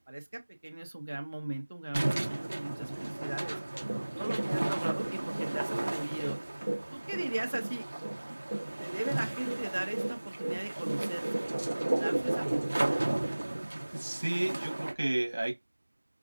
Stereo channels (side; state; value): both; inverted; correlation -1.00